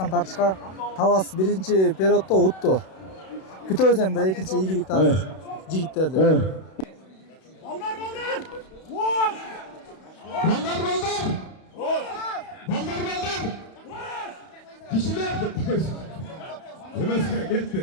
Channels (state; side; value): late; right; 32 ms